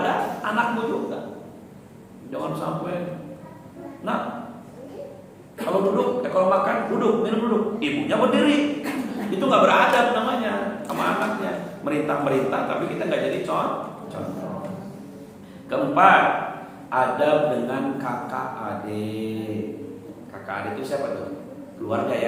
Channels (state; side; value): identical; both; correlation 1.00